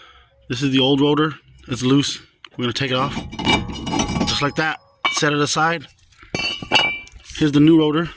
This is the old rotor. It's loose. We're going to take it off. Just like that. Set it aside. Here's the new rotor.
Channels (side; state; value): both; identical; correlation 1.00